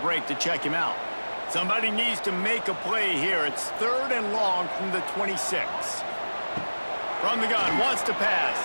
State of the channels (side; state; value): both; inverted; correlation -1.00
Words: to check him out. Somebody needs to make a play here. It's 3rd and long from the 26. From the gun, wants to pass.